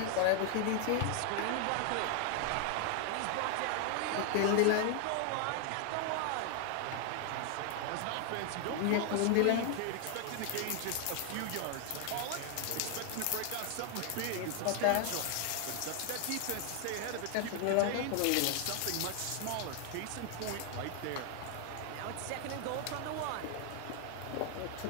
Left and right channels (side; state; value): both; different; correlation 0.00